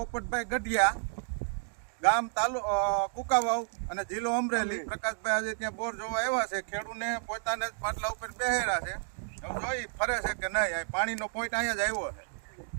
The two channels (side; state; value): left; silent; digital silence